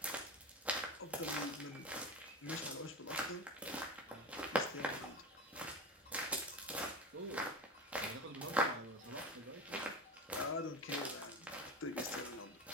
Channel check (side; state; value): both; normal; correlation 0.25